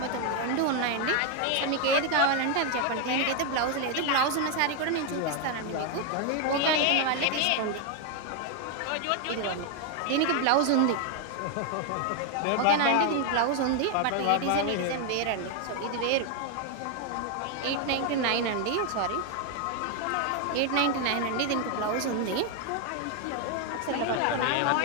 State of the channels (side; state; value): both; different; correlation 0.01